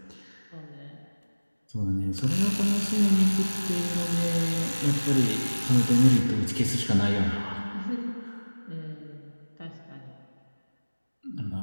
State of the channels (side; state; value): both; inverted; correlation -1.00